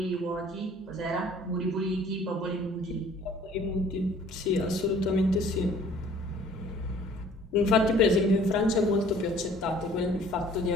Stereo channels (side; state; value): both; normal; correlation 0.53